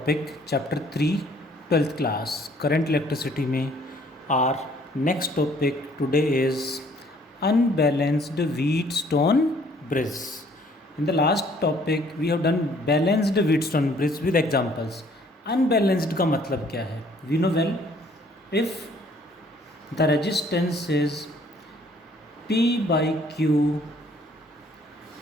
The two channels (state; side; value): normal; both; correlation 0.60